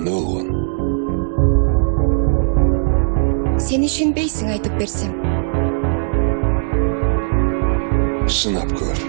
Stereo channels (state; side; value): silent; left; digital silence